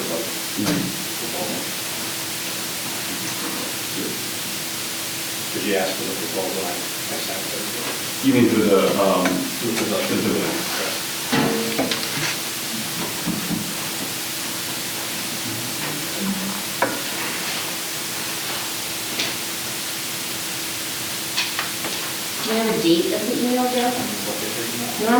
Did you ask for the proposal? I sent it. You mean for the Do you have a date of the email, Joe?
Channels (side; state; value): both; identical; correlation 1.00